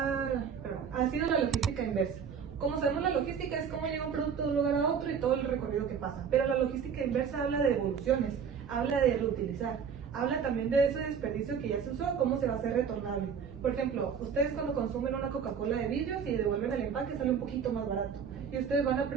logística inversa. Como sabemos, la logística es cómo llega un producto de un lugar a otro y todo el recorrido que pasa. Pero la logística inversa habla de evoluciones, habla de reutilizar, habla también de ese desperdicio que ya se usó, cómo se va a hacer retornable. Por ejemplo, ustedes cuando consumen una Coca-Cola de vidrio, si devuelven el empaque sale un poquito más barato. Y ustedes van a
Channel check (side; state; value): left; quieter; 6.9 dB